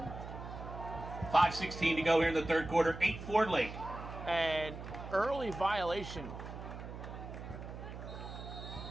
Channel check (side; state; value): right; noise; hum, 10 dB below the sound